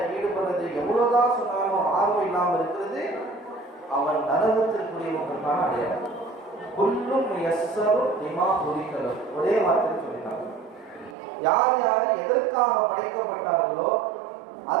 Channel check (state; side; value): drops out; left; at 11.2 s